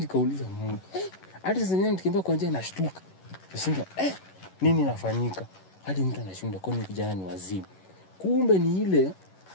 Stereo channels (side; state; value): right; late; 11 ms